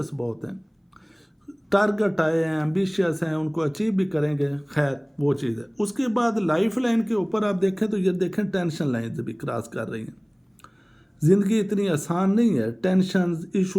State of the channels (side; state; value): both; identical; correlation 1.00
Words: बहुत हैं, टारगेट आए हैं, एम्बिशियस हैं, उनको अचीव भी करेंगे, खैर वो चीज़ है। उसके बाद लाइफ लाइन के ऊपर आप देखें तो ये देखें टेंशन लाइन भी क्रॉस कर रही हैं। ज़िंदगी इतनी आसान नहीं है, टेंशन्स,